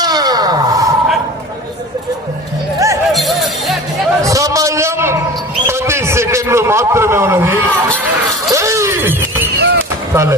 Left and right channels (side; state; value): both; normal; correlation 0.37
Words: సమయం 10 సెకండ్లు మాత్రమే ఉన్నది. చాలే